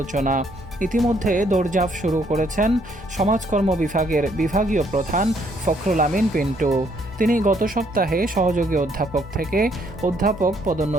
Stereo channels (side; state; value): both; normal; correlation 0.68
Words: ইতিমধ্যে দৌড়ঝাঁপ শুরু করেছেন সমাজকর্ম বিভাগের বিভাগীয় প্রধান ফখরুল আমিন পিন্টু। তিনি গত সপ্তাহে সহযোগী অধ্যাপক থেকে অধ্যাপক